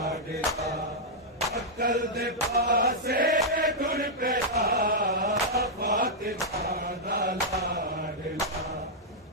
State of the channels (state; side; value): normal; both; correlation -0.07